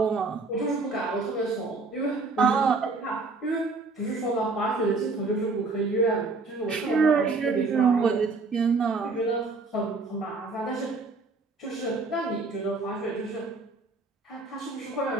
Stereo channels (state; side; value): quieter; left; 3.8 dB